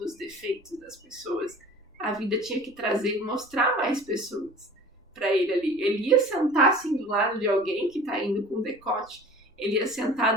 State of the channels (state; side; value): normal; both; correlation 0.43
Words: os defeitos das pessoas, a vida tinha que trazer e mostrar mais pessoas para ele ali. Ele ia sentar assim do lado de alguém que está indo com decote, ele ia sentar